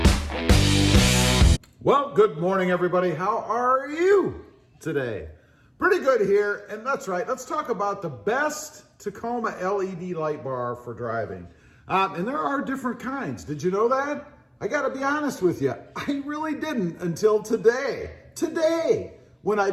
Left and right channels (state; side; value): identical; both; correlation 1.00